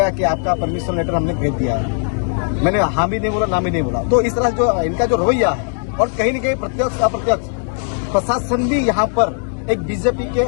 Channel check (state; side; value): silent; right; 59 dB below the other